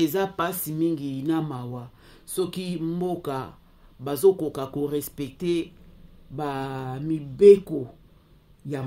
pasi mingi na mawa soki mboka bazokoka ko respecter ba mibeko ya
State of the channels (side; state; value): both; identical; correlation 1.00